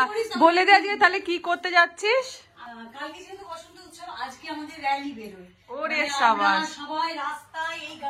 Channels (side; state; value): both; identical; correlation 1.00